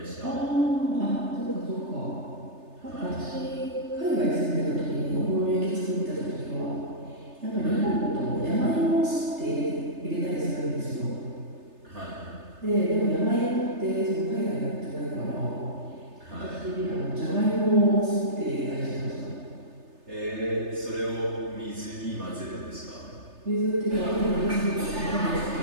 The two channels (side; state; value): left; late; 3.3 ms